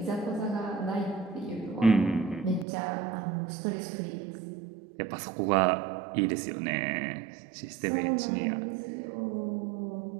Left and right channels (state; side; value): drops out; left; at 2.7 s